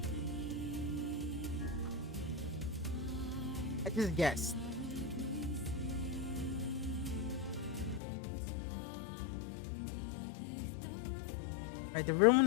I just guessed. Alright, the real one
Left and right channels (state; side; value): drops out; right; at 8.0 s